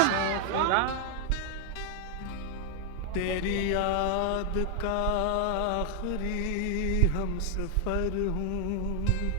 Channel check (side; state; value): both; different; correlation 0.00